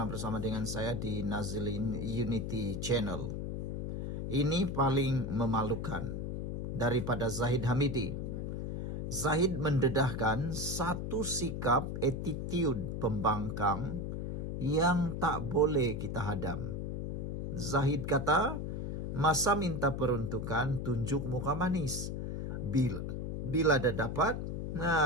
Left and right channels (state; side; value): noise; left; hum, 3 dB below the sound